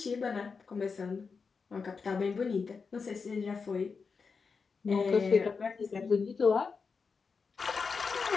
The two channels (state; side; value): quieter; right; 5.1 dB